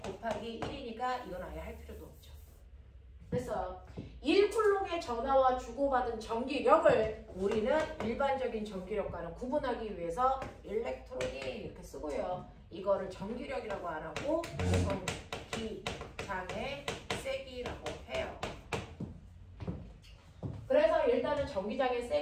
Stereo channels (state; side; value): identical; both; correlation 1.00